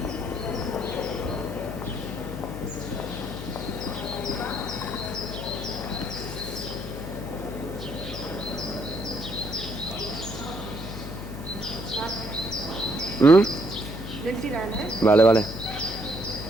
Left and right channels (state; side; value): noise; left; hum, 9 dB below the sound